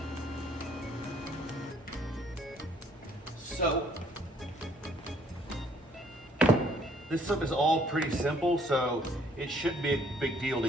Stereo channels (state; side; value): normal; both; correlation 0.63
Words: So, this stuff is all pretty simple, so it shouldn't be a big deal to